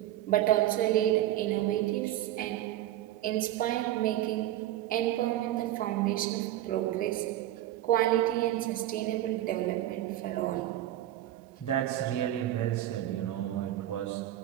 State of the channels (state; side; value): quieter; left; 13.6 dB